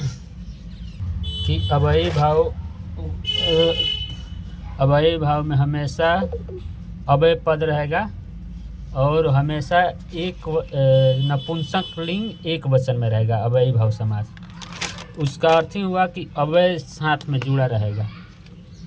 अव्ययी भाव में हमेशा अव्यय पद रहेगा और हमेशा एक नपुंसक लिंग एक वचन में रहेगा। अव्ययी भाव समास उसका अर्थ ही हुआ कि अव्यय साथ में जुड़ा रहेगा।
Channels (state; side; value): identical; both; correlation 1.00